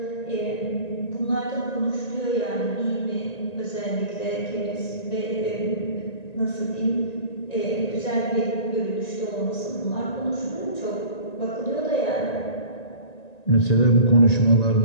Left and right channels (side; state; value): right; late; 1.9 ms